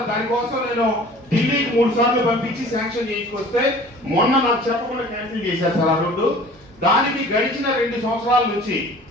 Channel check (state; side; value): normal; both; correlation 0.47